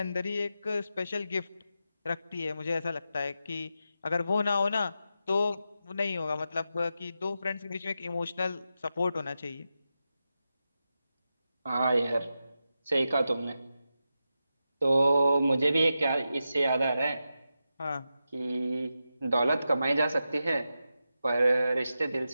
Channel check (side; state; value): both; inverted; correlation -0.89